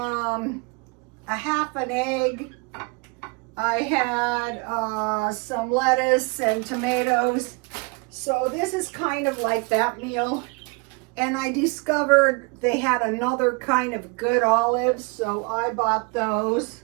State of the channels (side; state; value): left; quieter; 31.0 dB